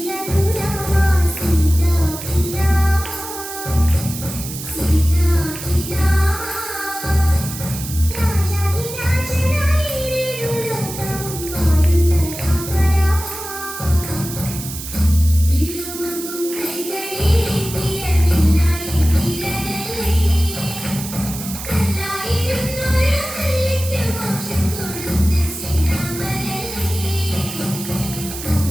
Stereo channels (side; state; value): right; noise; hiss, 9 dB below the sound